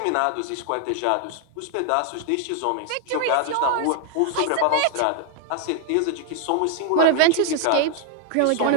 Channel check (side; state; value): both; different; correlation 0.00